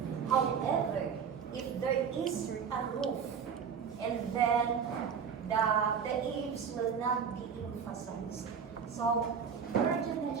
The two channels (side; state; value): left; quieter; 6.9 dB